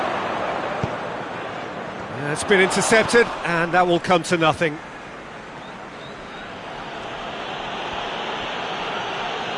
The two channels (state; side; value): identical; both; correlation 1.00